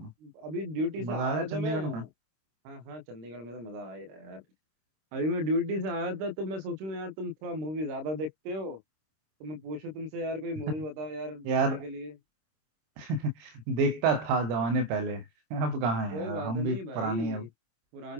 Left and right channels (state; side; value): late; left; 26 ms